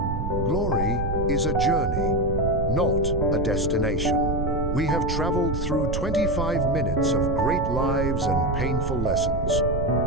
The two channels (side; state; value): right; noise; rumble, 2 dB below the sound